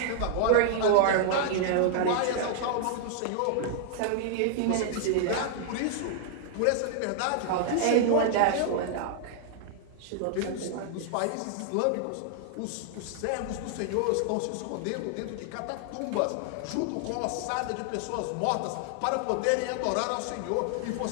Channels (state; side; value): different; both; correlation -0.01